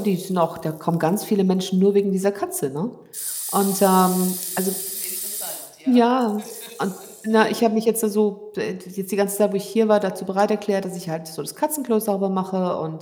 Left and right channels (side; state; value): both; identical; correlation 1.00